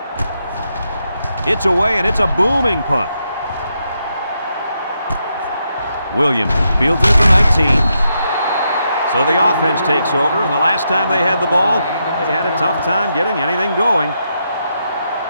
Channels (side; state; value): both; inverted; correlation -0.82